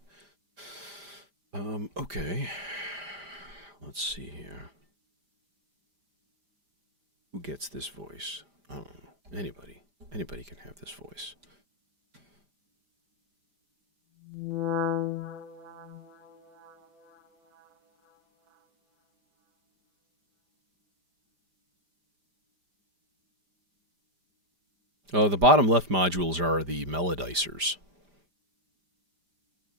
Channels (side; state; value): left; late; 5.0 ms